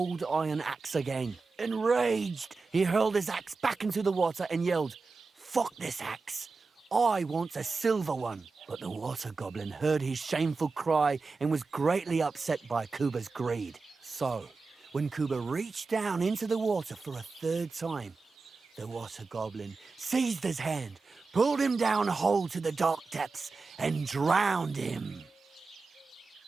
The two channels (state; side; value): quieter; left; 4.2 dB